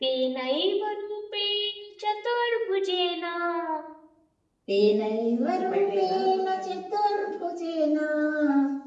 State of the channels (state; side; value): identical; both; correlation 1.00